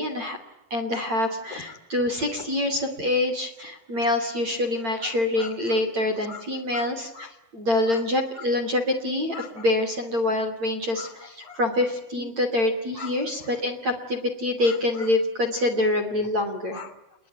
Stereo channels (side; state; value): left; late; 8.8 ms